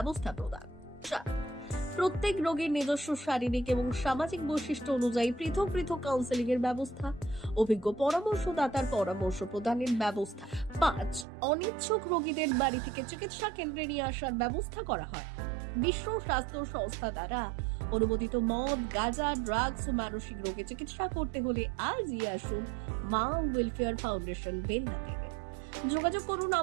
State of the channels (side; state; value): left; drops out; at 11.2 s